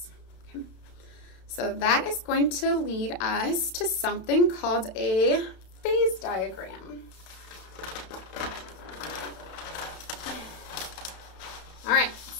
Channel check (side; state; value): right; late; 32 ms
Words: Okay? So that is going to lead us to something called a phase diagram. All right,